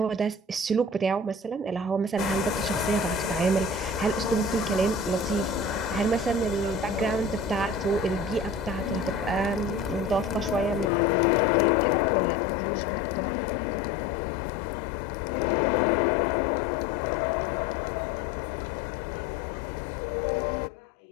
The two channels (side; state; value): right; drops out; at 10.9 s